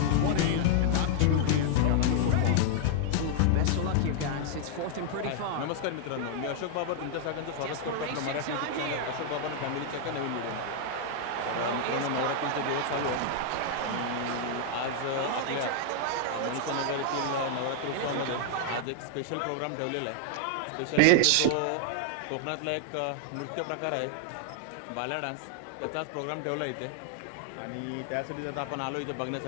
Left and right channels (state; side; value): different; both; correlation 0.00